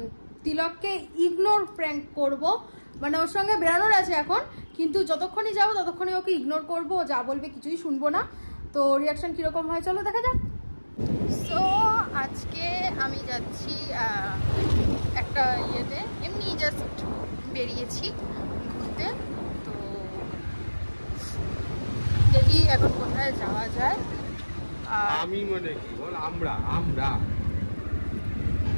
তিলককে ইগনোর প্র্যাঙ্ক করব। মানে ওর সঙ্গে বেরানোর আছে এখন, কিন্তু যতক্ষণই যাবো ততক্ষণই ওকে ইগনোর করবো। ও যা বলবে কিছুই শুনবো না। তো রিয়াকশন কিরকম হয় চলো দেখা যাক। সো আজকে আমি যাচ্ছি একটা ইয়েতে, এমনি জাস্ট বেরিয়েছি ঘুরতে। তো দেখি এখন কোথায় যাওয়া যায়। আমি মনে কি বল, আমরা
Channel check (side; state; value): both; inverted; correlation -1.00